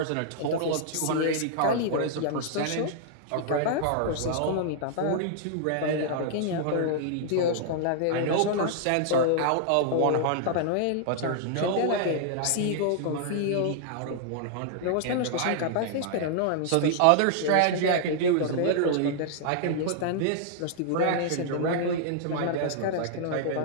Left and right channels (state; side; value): different; both; correlation -0.01